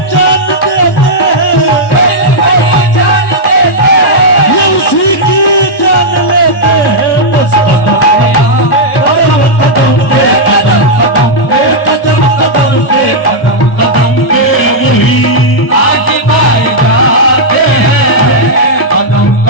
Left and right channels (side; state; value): right; late; 1.1 ms